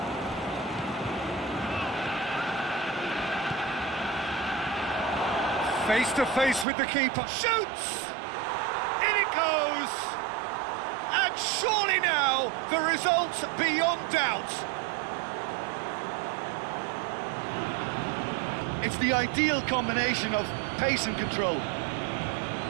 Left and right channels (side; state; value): left; drops out; at 6.7 s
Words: Face to face with the keeper. Shoots! In it goes! And surely now, the result beyond doubt. It's the ideal combination of pace and control.